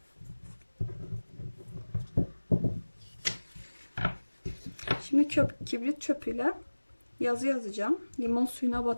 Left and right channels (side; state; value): both; inverted; correlation -1.00